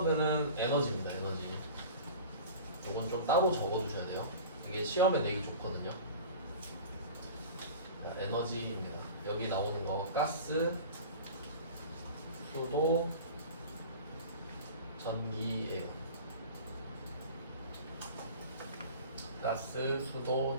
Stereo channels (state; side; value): inverted; both; correlation -0.37